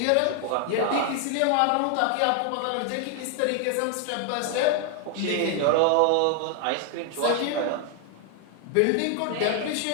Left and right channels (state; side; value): different; both; correlation 0.00